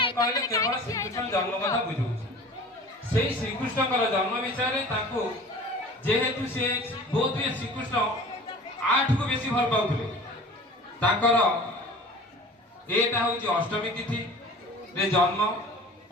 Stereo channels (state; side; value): normal; both; correlation 0.42